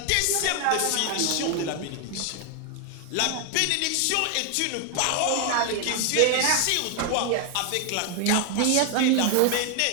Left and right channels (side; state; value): both; different; correlation 0.00